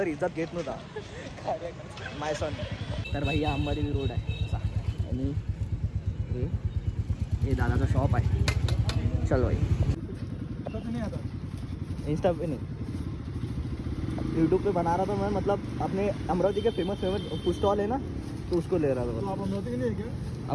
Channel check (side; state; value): both; identical; correlation 1.00